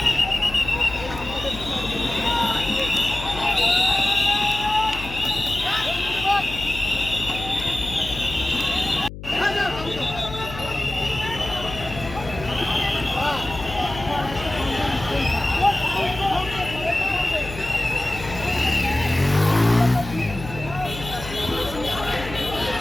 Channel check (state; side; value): noise; left; hum, 11 dB below the sound